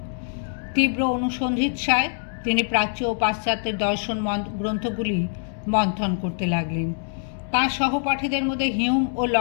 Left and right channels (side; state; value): right; silent; digital silence